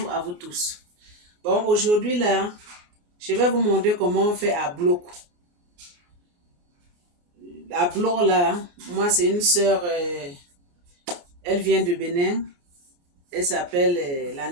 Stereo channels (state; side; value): late; left; 29 ms